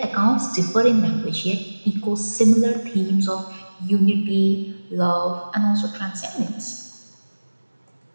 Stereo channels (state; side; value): inverted; both; correlation -1.00